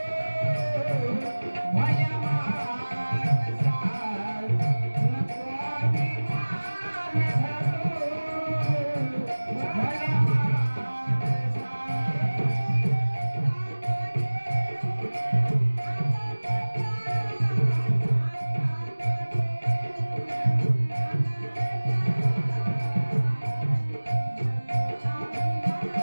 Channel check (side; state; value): both; inverted; correlation -1.00